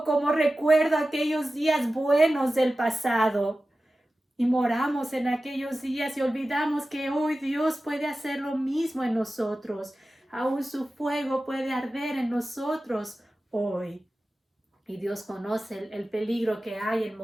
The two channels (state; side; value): normal; both; correlation 0.95